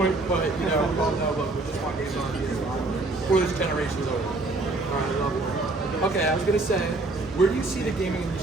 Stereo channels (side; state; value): left; quieter; 3.1 dB